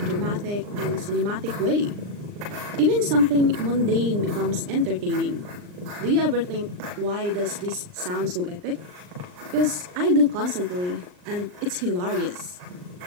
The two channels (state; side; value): late; left; 39 ms